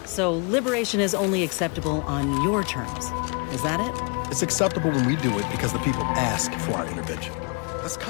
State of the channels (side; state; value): right; quieter; 34.8 dB